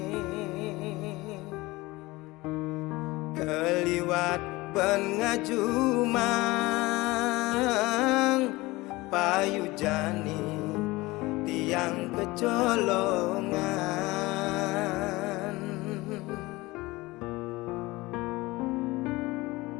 keliwat pengajumang payu jani tiang kecolongan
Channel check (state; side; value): quieter; right; 21.1 dB